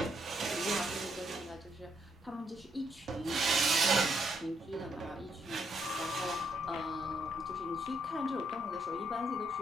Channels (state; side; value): normal; both; correlation 0.74